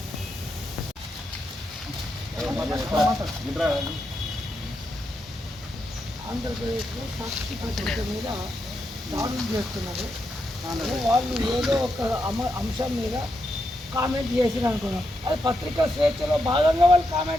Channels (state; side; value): normal; both; correlation 0.83